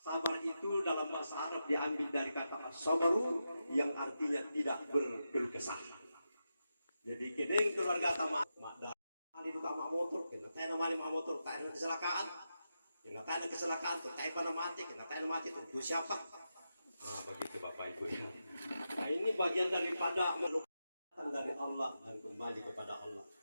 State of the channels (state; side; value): inverted; both; correlation -0.88